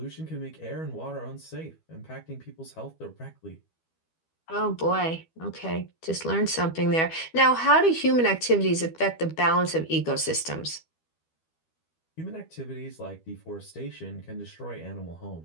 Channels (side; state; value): right; late; 12 ms